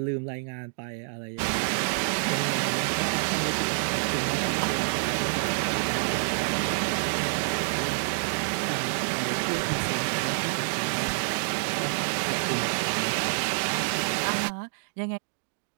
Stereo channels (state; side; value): silent; left; digital silence